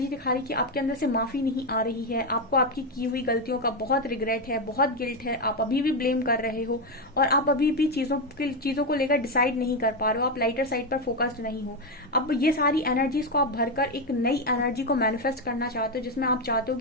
दिखा रही कि आपके अंदर से माफी नहीं आ रही है, आपको आपकी की हुई गलतियों का बहुत रिग्रेट है, बहुत गिल्ट है, आप अभी भी ब्लेम कर रहे हो और आप अभी भी चीजों को लेकर डिसाइड नहीं कर पा रहे हो, आप लाइटर साइड पर फोकस्ड नहीं हो। अब ये सारी एनर्जीज को आप भरकर एक नई एनर्जी को मैनिफेस्ट करना चाहते हो, जिसमें आप चाहते हो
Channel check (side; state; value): both; normal; correlation 0.08